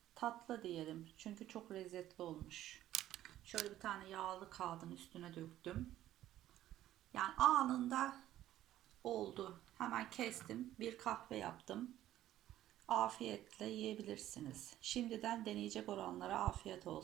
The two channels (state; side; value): quieter; left; 13.3 dB